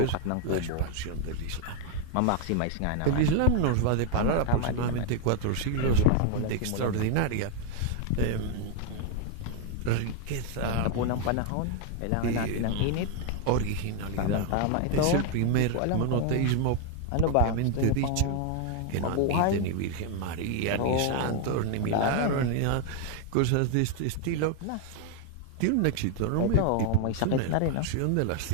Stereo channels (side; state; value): both; different; correlation 0.00